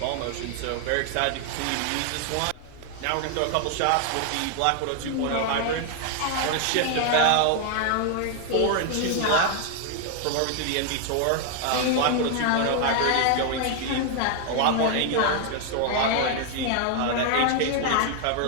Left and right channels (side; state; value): both; different; correlation 0.00